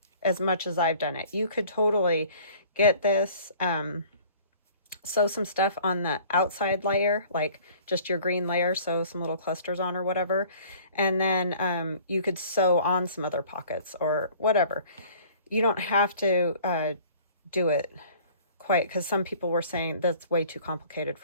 as much as I've done it. You could totally get this, sew some stuff on the outside layer, like just your green layer, sew some little clusters on or whatever, and then you could sew on some other pockets or whatever. You don't have to do it quite, because some people were saying that's way too complicated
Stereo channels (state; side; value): inverted; both; correlation -0.50